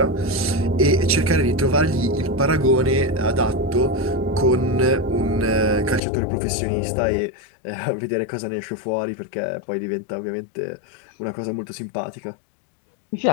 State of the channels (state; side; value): drops out; right; at 6.0 s